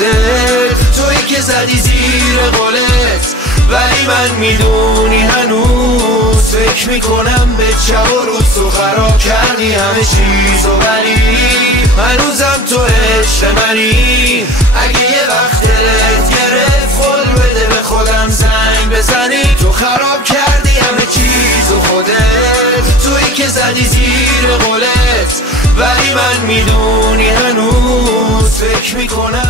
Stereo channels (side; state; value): both; normal; correlation 0.41